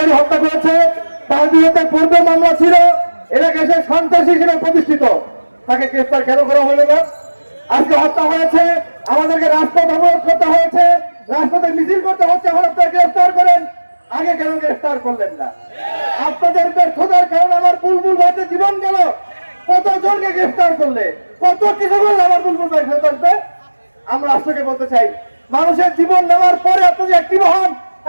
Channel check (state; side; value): inverted; both; correlation -1.00